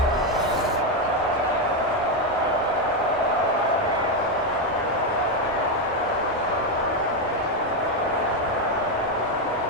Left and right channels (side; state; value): both; normal; correlation 0.06